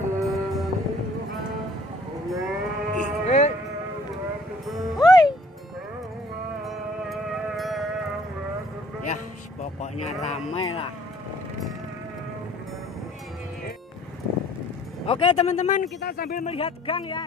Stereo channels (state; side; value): normal; both; correlation 0.57